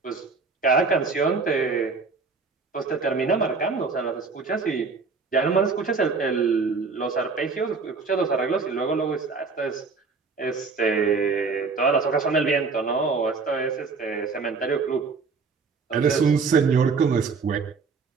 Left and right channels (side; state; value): left; quieter; 4.6 dB